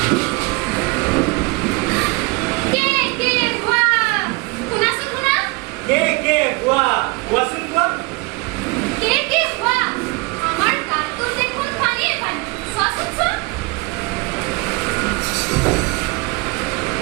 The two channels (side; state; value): left; quieter; 26.9 dB